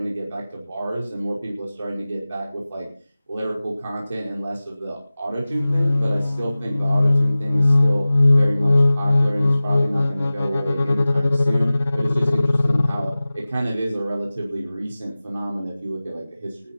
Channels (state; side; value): inverted; both; correlation -0.97